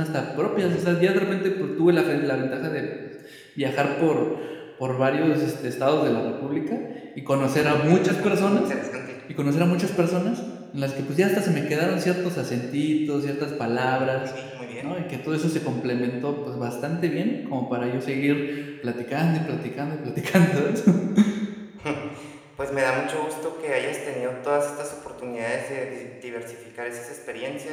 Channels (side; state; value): both; identical; correlation 1.00